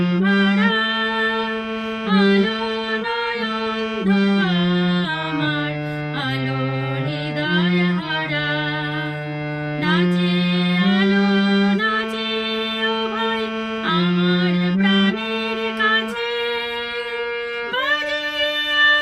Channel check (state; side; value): identical; both; correlation 1.00